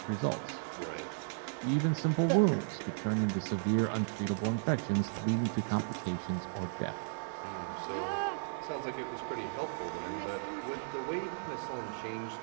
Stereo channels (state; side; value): silent; left; digital silence